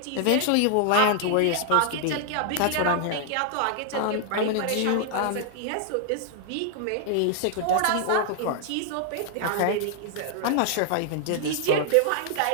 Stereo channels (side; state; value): both; different; correlation 0.00